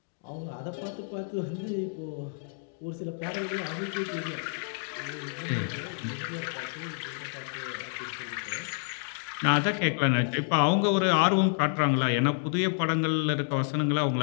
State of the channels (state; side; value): silent; right; digital silence